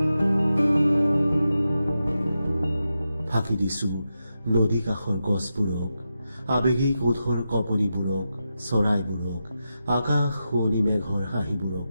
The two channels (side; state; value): both; inverted; correlation -0.89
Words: ফাঁকি দিছো নদী কাষৰ গছবোৰক, আবেগিক ওঠৰ কপনিবোৰক, চৰাইবোৰক, আকাশ শুৱনি মেঘৰ হাঁহিবোৰক